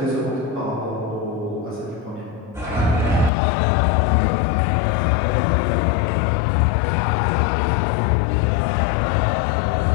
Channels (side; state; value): right; drops out; at 3.3 s